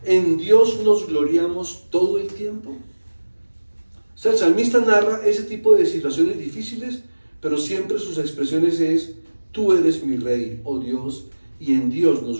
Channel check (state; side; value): inverted; both; correlation -1.00